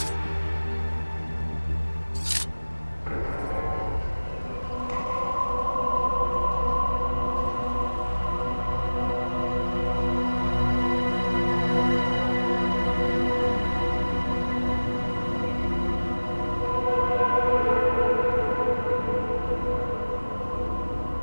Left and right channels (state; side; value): inverted; both; correlation -1.00